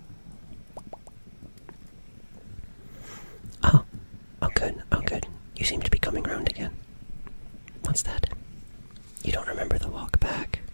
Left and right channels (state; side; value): inverted; both; correlation -1.00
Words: Oh good. You seem to be coming round again. What's that? You don't remember the walk back?